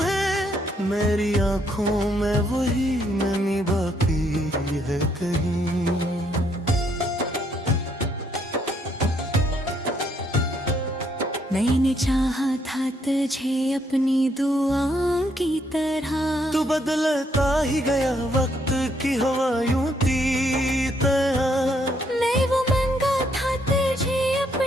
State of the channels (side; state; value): both; normal; correlation 0.72